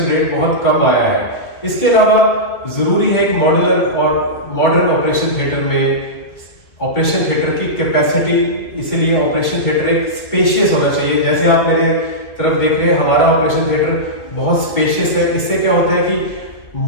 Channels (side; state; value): right; late; 2.3 ms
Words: रेट बहुत कम आया है। इसके अलावा जरूरी है कि मॉड्यूलर और मॉडर्न ऑपरेशन थिएटर में ऑपरेशन थिएटर की कैपेसिटी, इसलिए ऑपरेशन थिएटर एक स्पेशियस होना चाहिए। जैसे आप मेरे तरफ देख रहे हैं, हमारा ऑपरेशन थिएटर बहुत स्पेशियस है। इससे क्या होता है कि